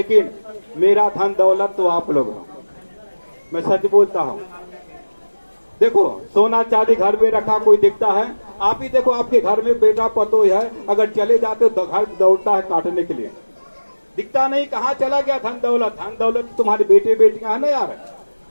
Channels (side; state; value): both; inverted; correlation -1.00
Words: मेरा धन दौलत तो आप लोग हो, मैं सच बोलता हूँ। देखो, सोना चांदी घर में रखा कोई दिखता है? आप ही देखो, आपके घर में बेटा पतो है, अगर चले जाते हो तो घर दौड़ता है काटने के लिए, दिखता नहीं कहाँ चला गया धन दौलत। धन दौलत तुम्हारे बेटे बेटियां है ना यार।